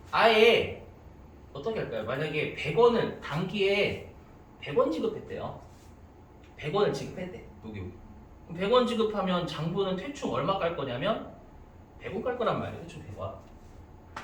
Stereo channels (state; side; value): identical; both; correlation 1.00